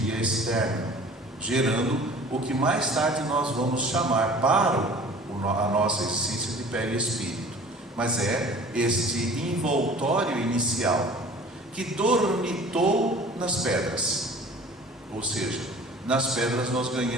externa, gerando o que mais tarde nós vamos chamar para a nossa essência de perispírito. Mas é este envoltório inicial que dormitou nas pedras. Ou seja, nas pedras nós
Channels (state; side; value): normal; both; correlation 0.46